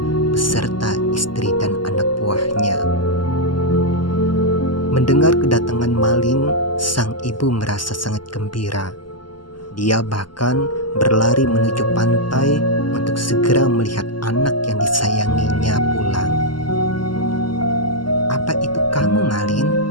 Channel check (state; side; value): late; right; 0.72 ms